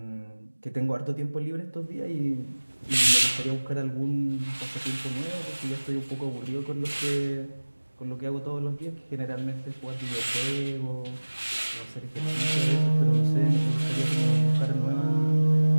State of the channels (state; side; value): inverted; both; correlation -1.00